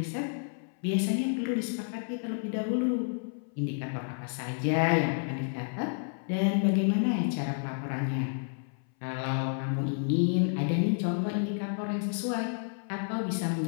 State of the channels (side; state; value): right; silent; 58 dB below the other